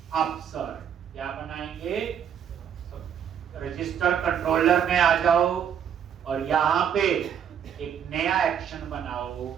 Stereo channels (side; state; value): left; quieter; 8.5 dB